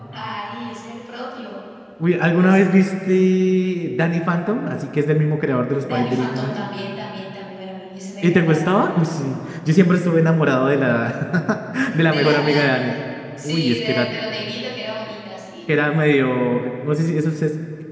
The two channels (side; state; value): both; identical; correlation 1.00